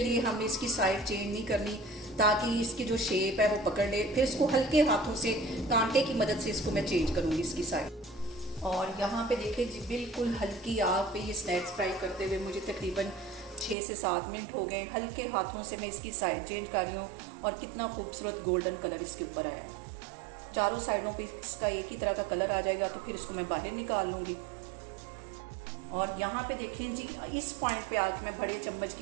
हमें इसकी साइड चेंज नहीं करनी ताकि इसकी जो शेप है वो पकड़ ले। फिर इसको हल्के हाथों से कांटे की मदद से इसको मैं चेंज करूँगी इसकी साइड। और यहाँ पे देखें जी, बिल्कुल हल्की आग पे ये स्नैक्स फ्राई करते हुए मुझे तकरीबन 6 से 7 मिनट हो गए। हल्के हाथों से मैं इसकी साइड चेंज कर रही हूँ और कितना खूबसूरत गोल्डन कलर इसके ऊपर आया है। चारों साइडों पे इसका एक ही तरह का कलर आ जाएगा तो फिर इसको मैं बाहर निकाल लूँगी। और यहाँ पे देखें जी, इस पॉइंट पे आके मैं बड़े चम्मच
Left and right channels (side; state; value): left; drops out; at 13.8 s